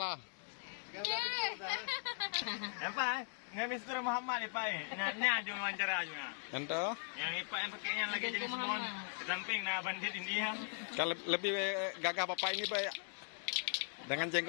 Apa? Nggak Mister Muhammad ni Pak. Nganya jom wawancara aja. Ente Yang Pak yang pakainya lagi jadi semua. Samping na bandit India. kalau lebih gagah bapak ini Pak. Dengan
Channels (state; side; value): silent; right; digital silence